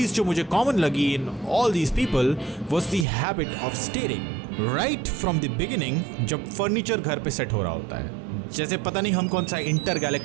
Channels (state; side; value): drops out; left; at 3.1 s